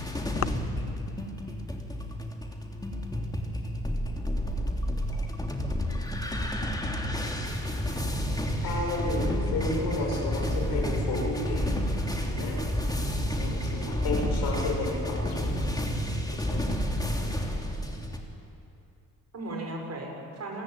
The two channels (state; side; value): normal; both; correlation 0.65